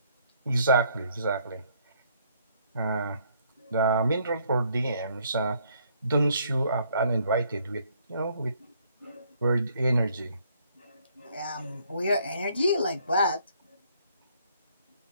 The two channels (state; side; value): inverted; both; correlation -0.66